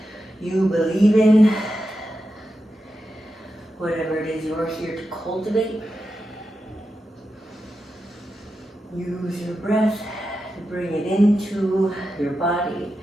you believe in, whatever it is you're here to cultivate. Use your breath to bring it into your body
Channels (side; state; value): both; normal; correlation 0.89